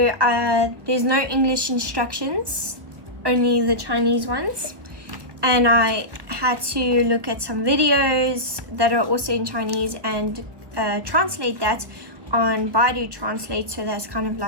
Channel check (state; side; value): late; left; 1.3 ms